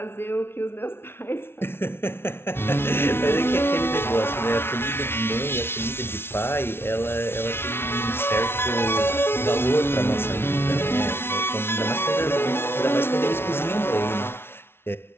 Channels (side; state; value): right; late; 0.12 ms